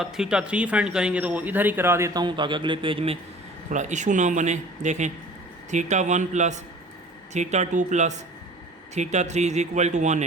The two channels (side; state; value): both; normal; correlation 0.45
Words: थीटा 3 फाइंड करेंगे तो वो इधर ही करा देता हूँ ताकि अगले पेज में थोड़ा इशू ना बने। देखें theta 1 plus theta 2 plus theta 3 is equal to